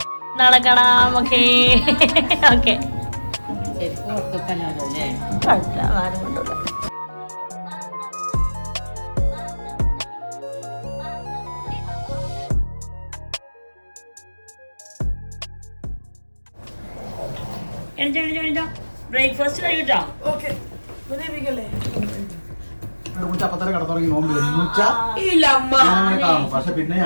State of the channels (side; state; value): both; inverted; correlation -1.00